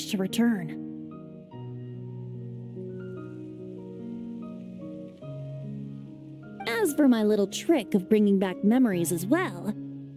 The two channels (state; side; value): identical; both; correlation 1.00